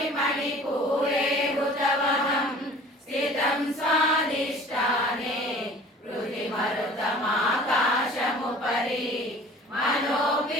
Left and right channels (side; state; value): both; normal; correlation 0.47